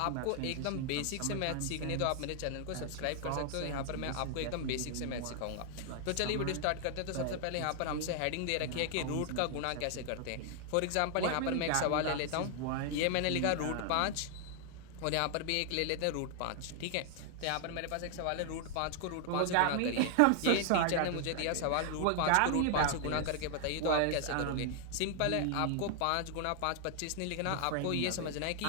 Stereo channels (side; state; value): both; different; correlation 0.00